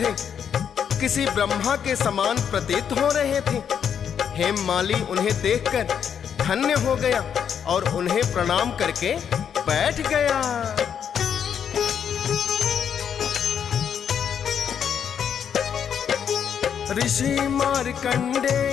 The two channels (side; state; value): right; quieter; 8.0 dB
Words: किसी ब्रह्मा के समान प्रतीत हो रहे थे। हेममाली उन्हें देखकर धन्य हो गया और उन्हें प्रणाम करके बैठ गया। ऋषि